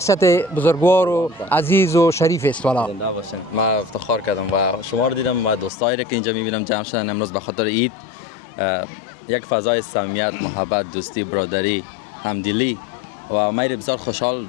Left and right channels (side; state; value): right; drops out; at 5.7 s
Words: بزرگوار و عزیز و شریف است. والا زنده باشین. ما افتخار کردم و شما رو دیدم و دوستایی که اینجا میبینم جمع شدن امروز به خاطر عید. یک فضای صمیمیت، محبت، دوستی، برادری، همدلی و ما بسیار خوشحال